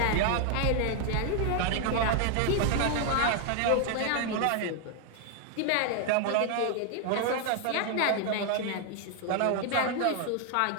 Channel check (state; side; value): different; both; correlation 0.00